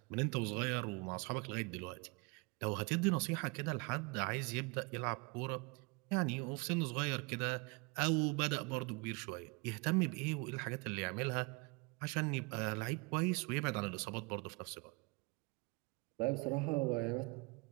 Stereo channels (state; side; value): quieter; left; 29.1 dB